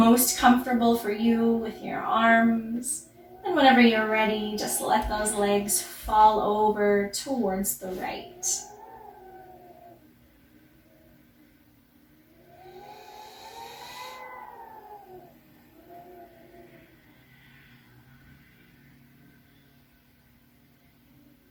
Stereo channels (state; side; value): identical; both; correlation 1.00